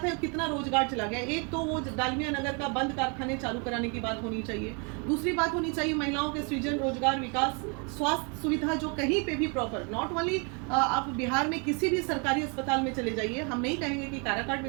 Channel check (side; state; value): left; quieter; 35.1 dB